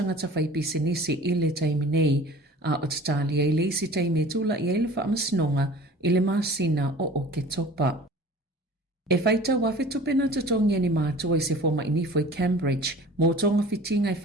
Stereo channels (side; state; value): both; normal; correlation 0.44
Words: whai pisinisi i le taimi nei. A o tatali e leisi taimi e tula i ele whaamasnonga i le masina o ke topa. E whaita wafe tupena tatongi ni mātua i se forma inifo i Cambridge, mō tonga whitinga i